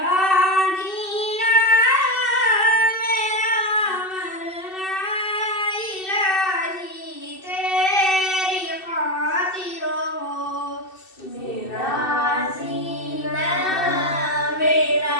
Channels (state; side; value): late; right; 2.6 ms